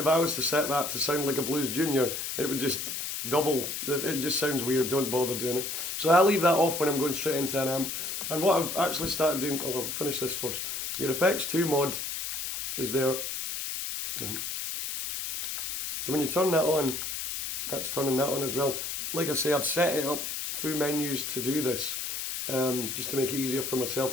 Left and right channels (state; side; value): noise; left; hiss, 4 dB below the sound